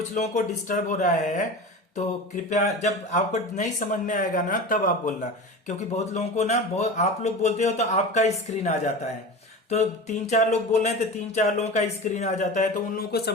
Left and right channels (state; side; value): normal; both; correlation 0.31